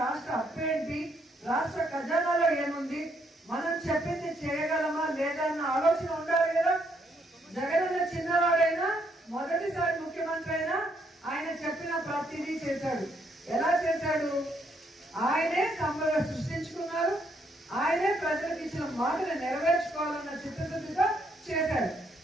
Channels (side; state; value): both; normal; correlation 0.73